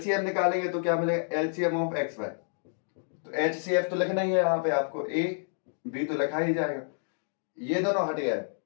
निकालेंगे तो क्या मिलेगा? LCM of XY। तो HCF तो लिखना ही है यहाँ पे आपको, a b तो लिखा ही जाएगा, ये दोनों हट गया है।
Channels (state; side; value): silent; right; digital silence